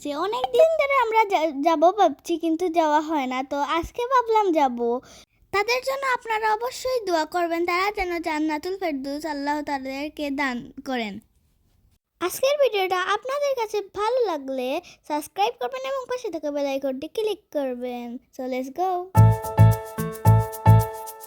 অনেক দিন ধরে আমরা যাব ভাবছি, কিন্তু যাওয়া হয় না। তো আজকে ভাবলাম যাব। তাদের জন্য আপনারা অবশ্যই দোয়া করবেন, তারা যেন জান্নাতুল ফেরদৌস আল্লাহ তাদেরকে দান করেন। আজকের ভিডিওটা আপনাদের কাছে ভালো লাগলে সাবস্ক্রাইব করবেন এবং পাশে থাকা বেল আইকনটি ক্লিক করবেন। So let's go.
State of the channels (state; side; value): identical; both; correlation 1.00